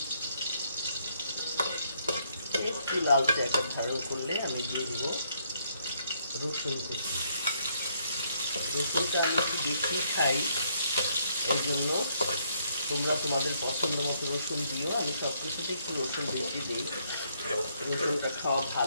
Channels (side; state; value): both; inverted; correlation -0.71